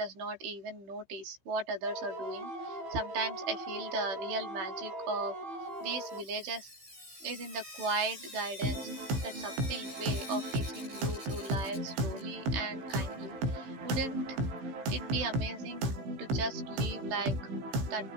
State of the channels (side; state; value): left; late; 15 ms